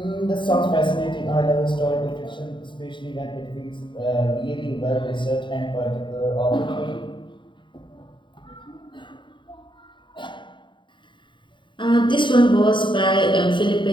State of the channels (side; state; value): right; late; 0.23 ms